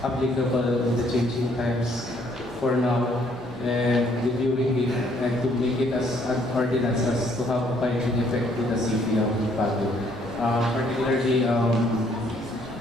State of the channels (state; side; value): normal; both; correlation 0.66